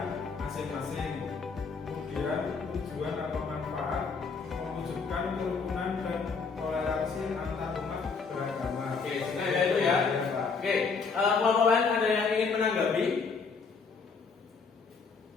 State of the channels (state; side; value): quieter; right; 5.0 dB